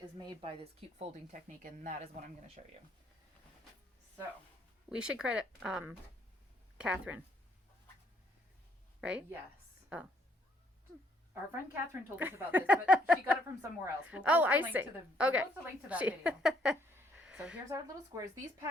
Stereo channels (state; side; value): normal; both; correlation 0.68